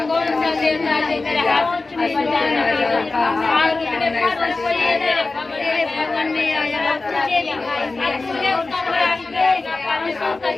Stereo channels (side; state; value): right; quieter; 3.5 dB